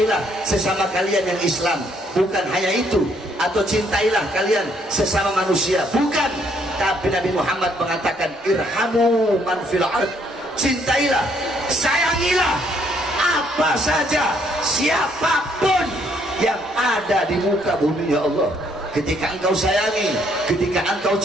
sesama kalian yang Islam, bukan hanya itu, atau cintailah kalian sesama manusia, bukan. Tapi Nabi Muhammad mengatakan irhamu man fil ard, cintailah, sayangilah apa saja, siapapun yang ada di muka bumi ya Allah. Ketika engkau sayangi, ketika engkau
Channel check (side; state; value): both; normal; correlation 0.68